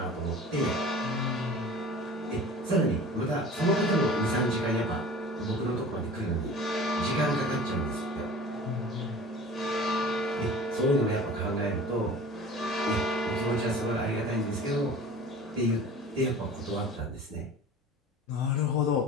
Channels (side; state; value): both; normal; correlation 0.41